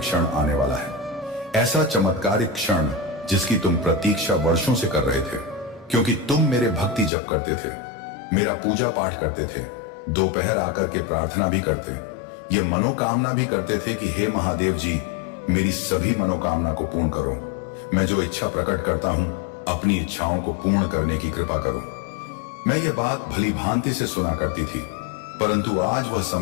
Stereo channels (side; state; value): right; drops out; at 7.1 s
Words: आने वाला है। ऐसा चमत्कारिक क्षण जिसकी तुम प्रतीक्षा वर्षों से कर रहे थे, क्योंकि तुम मेरे भक्ति जप करते थे, मेरा पूजा पाठ करते थे, दोपहर आकर के प्रार्थना भी करते, ये मनोकामना भी करते थे कि हे महादेव जी मेरी सभी मनोकामना को पूर्ण करो। मैं जो इच्छा प्रकट करता हूं अपनी इच्छाओं को पूर्ण करने की कृपा करो। मैं ये बात भली भांति से सुना करती थी, परंतु आज वह